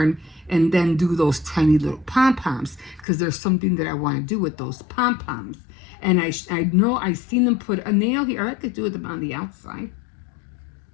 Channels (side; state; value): right; drops out; at 3.1 s